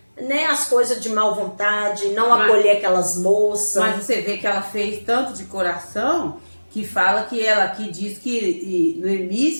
né, as coisas de má vontade, não acolher aquelas moças. Mas você vê que ela fez tanto de coração que fala que ela aqui diz que Noemi,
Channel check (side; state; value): both; inverted; correlation -1.00